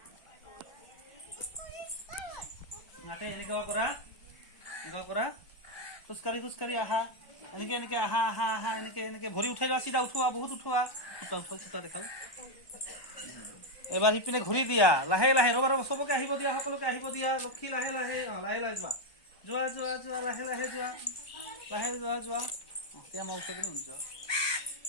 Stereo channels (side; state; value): right; late; 1.1 ms